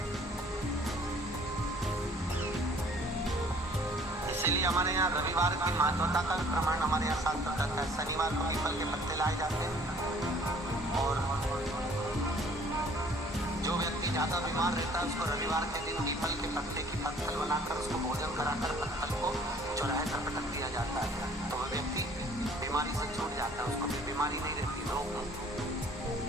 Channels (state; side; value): normal; both; correlation 0.55